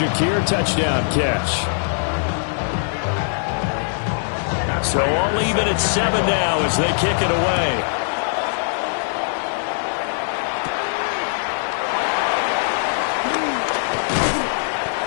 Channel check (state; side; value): silent; right; digital silence